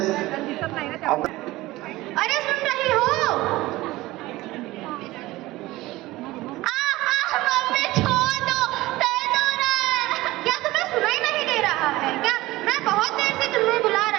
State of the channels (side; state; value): left; quieter; 18.3 dB